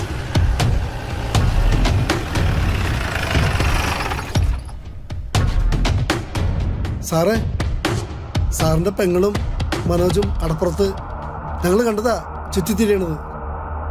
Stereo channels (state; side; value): identical; both; correlation 1.00